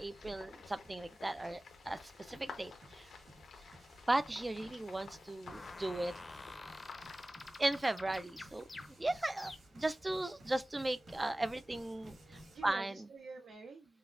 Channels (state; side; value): normal; both; correlation 0.98